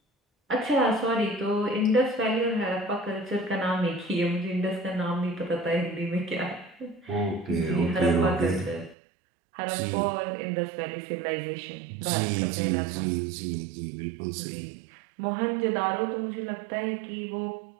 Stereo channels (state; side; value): drops out; left; at 9.0 s